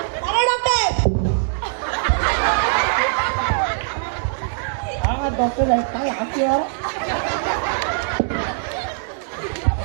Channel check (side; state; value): left; silent; digital silence